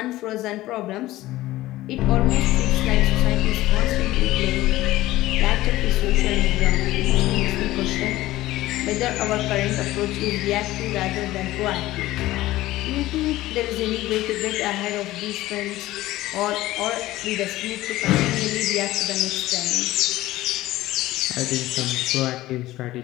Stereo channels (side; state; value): right; quieter; 16.6 dB